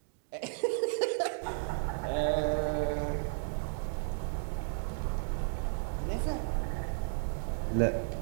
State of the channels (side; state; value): left; silent; digital silence